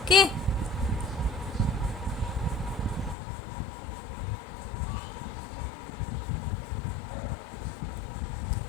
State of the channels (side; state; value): right; drops out; at 3.2 s